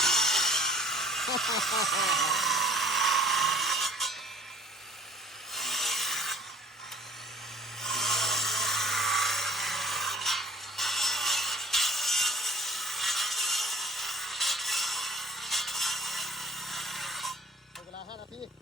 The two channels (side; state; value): both; normal; correlation 0.53